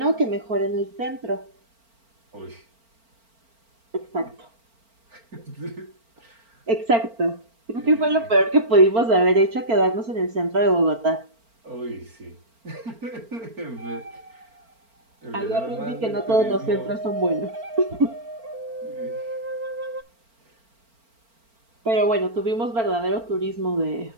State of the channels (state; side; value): late; left; 4.4 ms